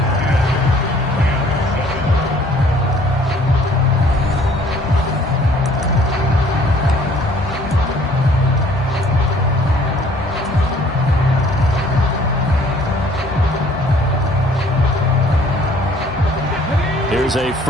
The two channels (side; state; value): both; normal; correlation 0.57